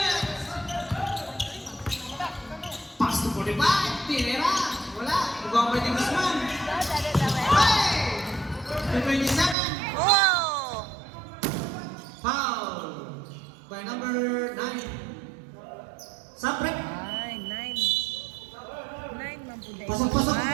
Pass to 45. Tinira. Wala. Ibang may Guzman. Hey! To 27. Oh! Foul. By number 9. Sapret. Ay, 9 man po dahil. Pasok, pasok.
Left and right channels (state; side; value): drops out; left; at 9.6 s